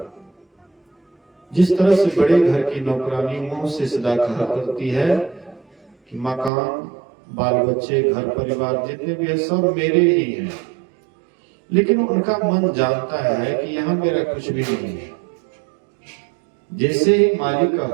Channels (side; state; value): left; drops out; at 6.5 s